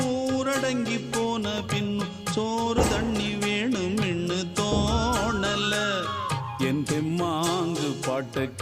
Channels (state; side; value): identical; both; correlation 1.00